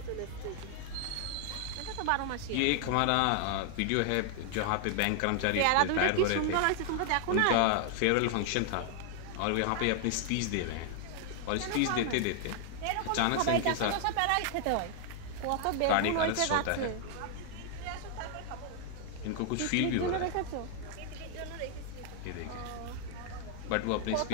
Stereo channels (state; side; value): different; both; correlation 0.00